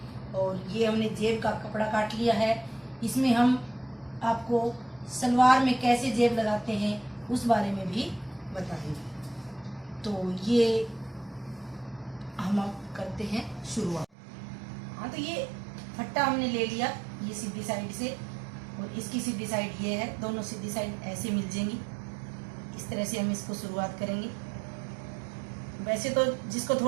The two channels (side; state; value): left; drops out; at 14.1 s